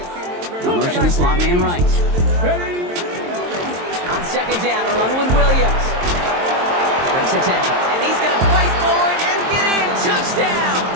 Motion the slot man right. On 2nd down, a run with Williams. Breaks a tackle. And he's going to fight forward and get in. Touchdown!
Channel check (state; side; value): late; left; 23 ms